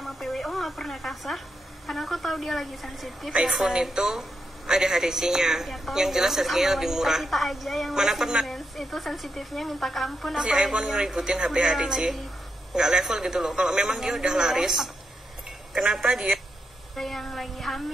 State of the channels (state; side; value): normal; both; correlation 0.84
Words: PWO nggak pernah kasar karena aku tahu dia lagi sensitif. iPhone ya, itu ada HTC-nya ya, yang jelas harganya lebih murah. Kita aja yang mana pernah itu sensitifnya minta ampun. si iPhone ngeributin HP HTC, nggak level gitu loh. Kalau memang dia udah laris, kenapa dia yang lagi